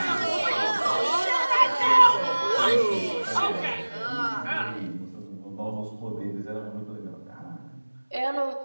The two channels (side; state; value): both; inverted; correlation -1.00